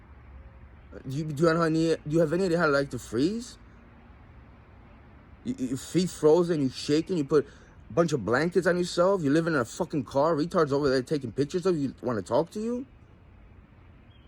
Do you have any idea how to like to freeze? Your feet frozen, you shaking, you put a bunch of blankets on yourself, you're living in a fucking car, retards over there taking pictures of you, want to talk to you?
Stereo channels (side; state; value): both; identical; correlation 1.00